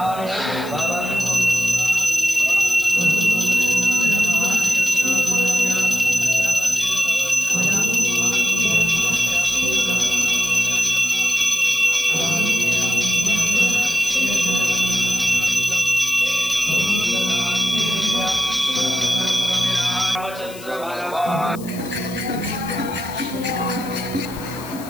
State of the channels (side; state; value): left; noise; hiss, 17 dB below the sound